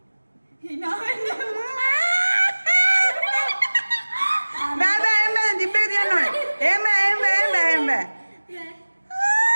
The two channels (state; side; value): inverted; both; correlation -1.00